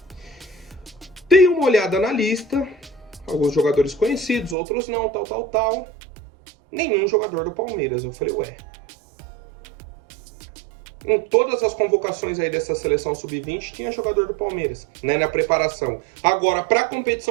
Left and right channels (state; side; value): drops out; left; at 4.5 s